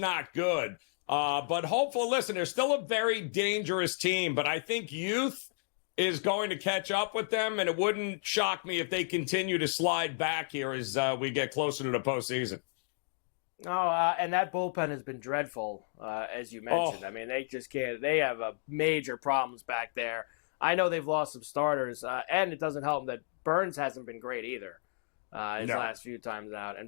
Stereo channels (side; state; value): right; silent; digital silence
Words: good. But hopeful, listen, they're still a very dangerous team, but I think youth is going to catch up with them, and it wouldn't shock me if they continue to slide back here as we get closer to the postseason. And that bullpen has been dreadful, as you mentioned. I mean, they just can't. They have major problems back there. I know they've lost some starters, and it doesn't help that Burns hasn't been great either last few times out, and